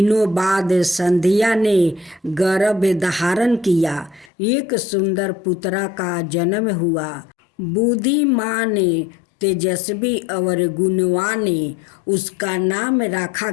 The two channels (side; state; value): right; drops out; at 4.3 s